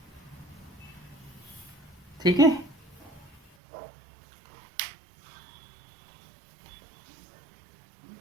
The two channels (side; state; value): left; drops out; at 3.5 s